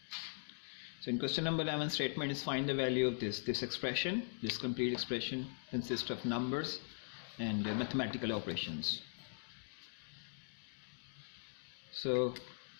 So in question number 11, statement is find the value of this expression. This complete expression consists of numbers and mathematical operations.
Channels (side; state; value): right; silent; digital silence